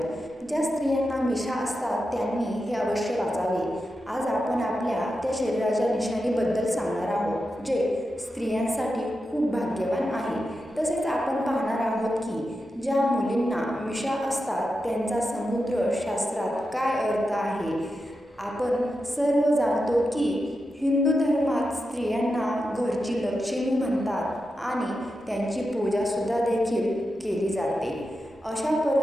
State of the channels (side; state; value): both; normal; correlation 0.89